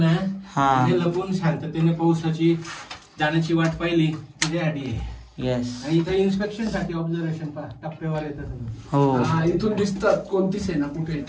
लपून शांततेने पावसाची जाण्याची वाट पाहिली त्याच्यासाठी. येस. आणि इथं इन्स्पेक्शन साठी ऑब्झर्वेशन टप्प्यावर येतात. हो इथून दिसतात कोणती सेना कुठे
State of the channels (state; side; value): identical; both; correlation 1.00